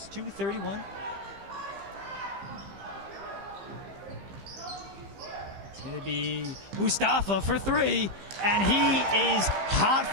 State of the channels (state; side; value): late; left; 15 ms